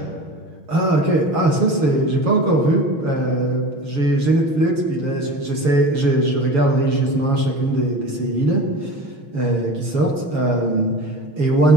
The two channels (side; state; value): left; late; 7.1 ms